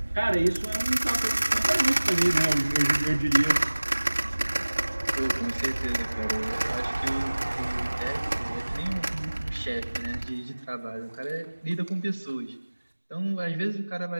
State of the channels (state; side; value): inverted; both; correlation -1.00